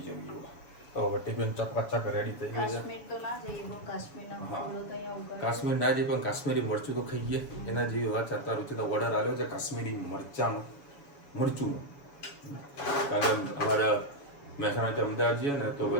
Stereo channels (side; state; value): right; late; 7.1 ms